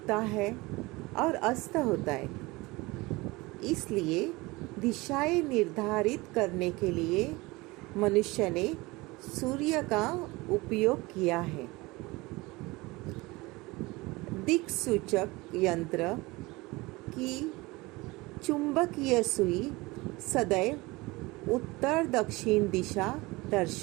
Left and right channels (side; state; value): left; quieter; 22.5 dB